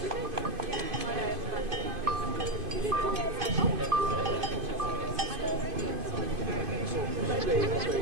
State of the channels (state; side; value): late; left; 2.5 ms